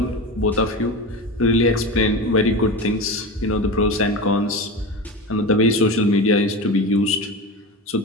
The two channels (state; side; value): normal; both; correlation 0.26